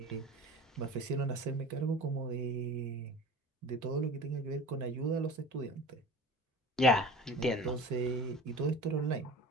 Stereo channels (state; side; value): normal; both; correlation 0.38